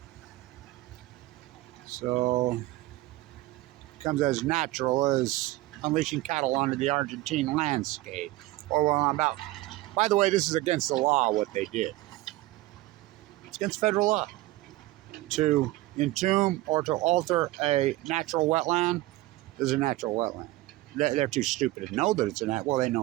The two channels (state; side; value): quieter; left; 18.0 dB